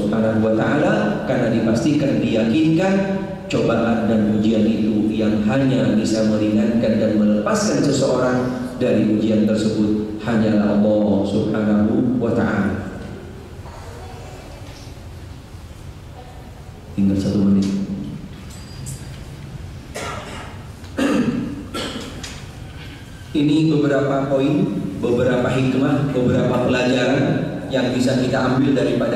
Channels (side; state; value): both; identical; correlation 1.00